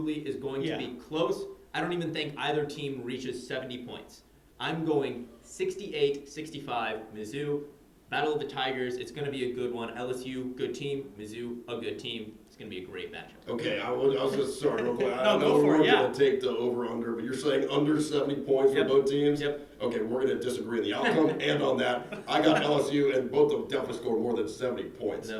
is going to be close. I don't even think either team reaches 70 points. I'm going 68-65 Mizzou. Battle of the Tigers, it's going to be a good one. LSU, good team. Mizzou, a good team. It's going to be a great matchup. Okay, I was just sorry real quick. I No, know go for we're it, yeah. going to take the over/under, but you're saying under 70 points for both teams? Yep. Okay, we're going to disagree on the outcome and on that. I got LSU, and both of them definitely scored more than 70 points. No.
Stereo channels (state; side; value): identical; both; correlation 1.00